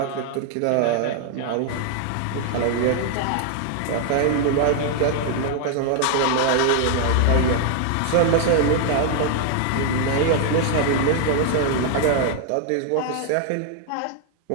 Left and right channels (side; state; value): both; different; correlation 0.00